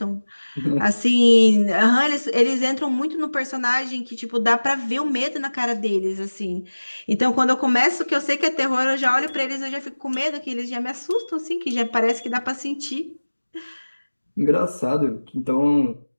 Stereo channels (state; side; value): inverted; both; correlation -1.00